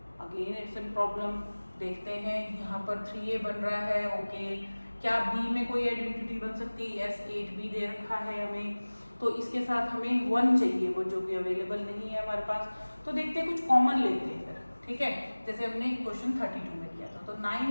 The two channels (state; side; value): inverted; both; correlation -1.00